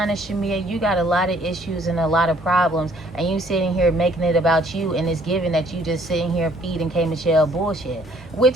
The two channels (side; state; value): both; normal; correlation 0.62